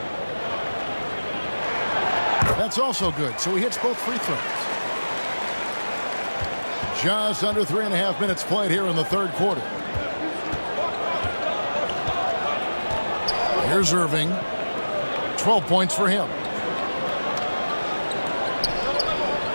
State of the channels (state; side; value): inverted; both; correlation -1.00